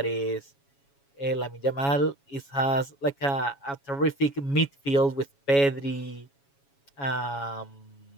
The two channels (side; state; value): right; late; 7.2 ms